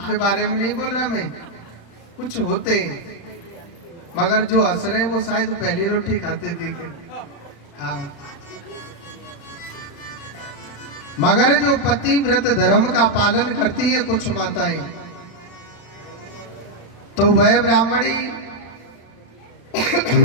बारे में नहीं बोल रहा मैं, कुछ होते हैं, मगर जो हंस रहे वो शायद पहली रोटी खाते दिखे। हाँ, मगर जो पतिव्रत धर्म का पालन करती है कुछ माताएं, तो वह ब्राह्मणी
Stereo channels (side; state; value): right; late; 35 ms